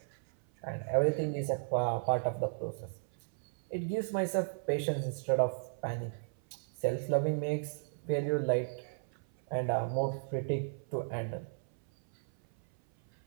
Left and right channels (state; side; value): silent; left; 55 dB below the other